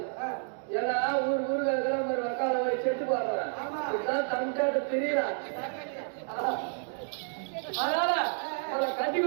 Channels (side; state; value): left; silent; digital silence